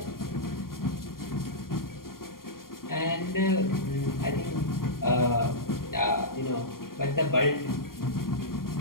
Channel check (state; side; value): late; right; 0.92 ms